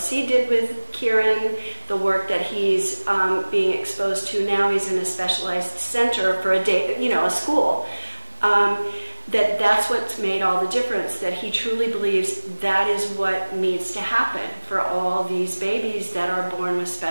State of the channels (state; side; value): inverted; both; correlation -1.00